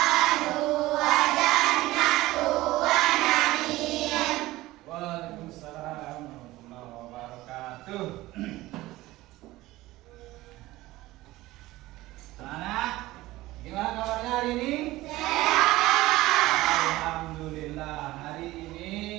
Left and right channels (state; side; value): quieter; left; 17.9 dB